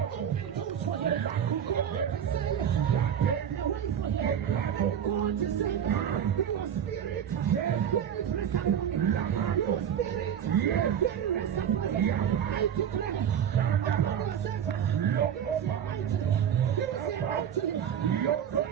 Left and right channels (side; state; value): left; quieter; 8.9 dB